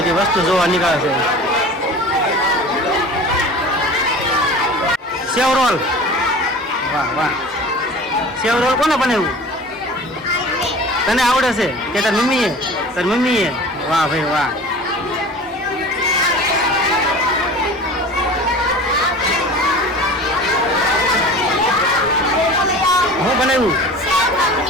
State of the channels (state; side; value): normal; both; correlation 0.39